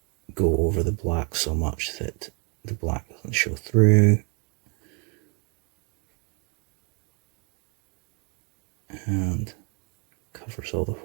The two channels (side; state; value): left; quieter; 35.1 dB